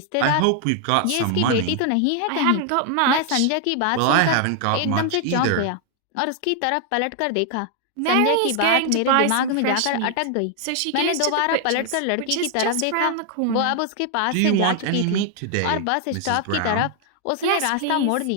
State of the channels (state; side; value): different; both; correlation 0.00